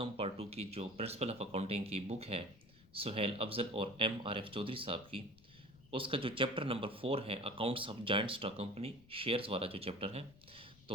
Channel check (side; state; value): left; noise; rumble, 24 dB below the sound